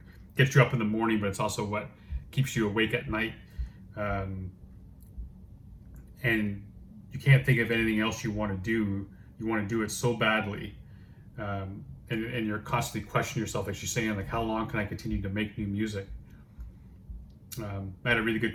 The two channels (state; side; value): identical; both; correlation 1.00